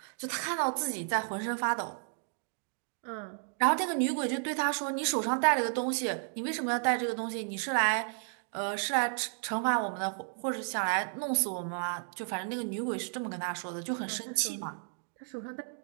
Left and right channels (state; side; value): silent; left; 56 dB below the other